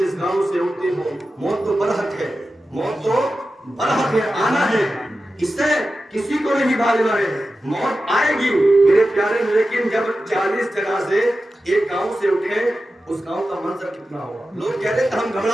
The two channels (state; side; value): normal; both; correlation 0.93